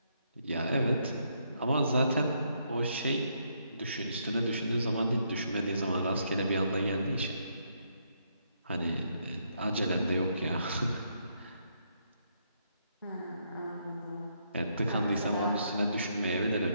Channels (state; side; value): inverted; both; correlation -0.75